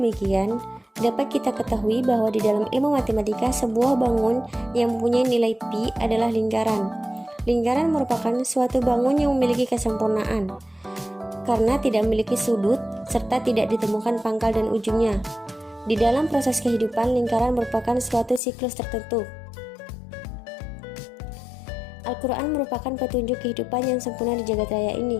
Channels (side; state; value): right; drops out; at 18.4 s